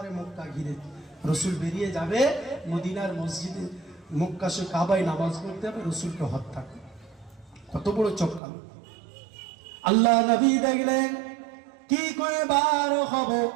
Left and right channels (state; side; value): drops out; left; at 8.4 s